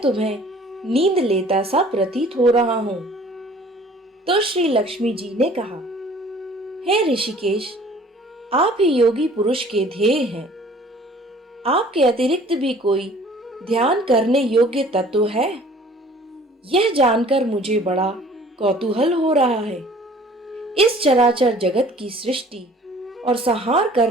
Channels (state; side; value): normal; both; correlation 0.52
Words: तुम्हें नींद लेता सा प्रतीत हो रहा हूं। तो श्री लक्ष्मी जी ने कहा, हे ऋषिकेश, आप ही योगी पुरुष के ध्येय हैं। आपके अतिरिक्त भी कोई ध्यान करने योग्य तत्व है? यह जानकर मुझे बड़ा कौतूहल हो रहा है। इस चराचर जगत की सृष्टि और संहार